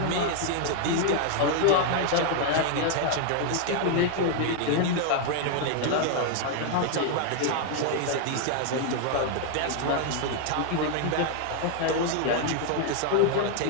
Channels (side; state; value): both; different; correlation 0.00